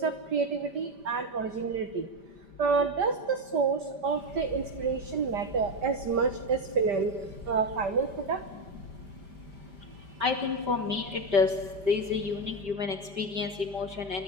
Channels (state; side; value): late; left; 5.1 ms